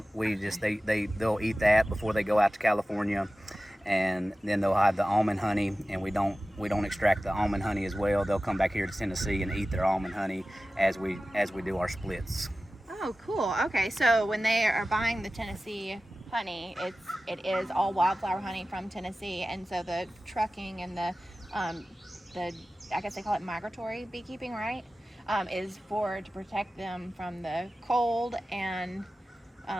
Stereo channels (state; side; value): normal; both; correlation 0.95